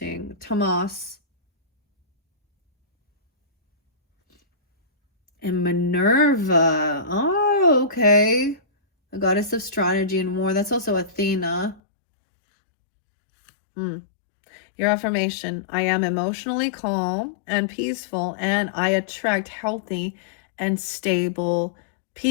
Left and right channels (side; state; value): right; drops out; at 11.8 s